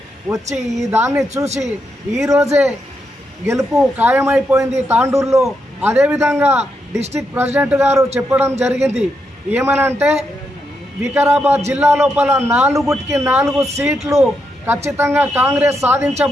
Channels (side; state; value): both; normal; correlation 0.82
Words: వచ్చి ఈ దాన్ని చూసి ఈరోజే గెలుపు ఖాయమైపోయింది తాండూరులో. అదేవిధంగా డిస్టిక్ ప్రెసిడెంట్ గారు చెప్పడం జరిగింది ఏమనంటే వికారాబాద్ జిల్లా లోపల 4 సీట్లు ఖచ్చితంగా కాంగ్రెస్